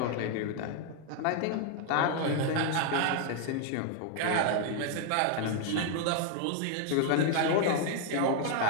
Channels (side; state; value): both; different; correlation 0.00